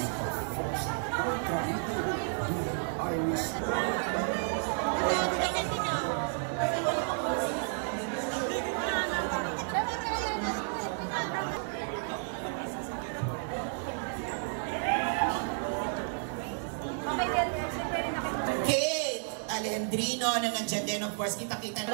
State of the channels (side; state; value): left; silent; 57 dB below the other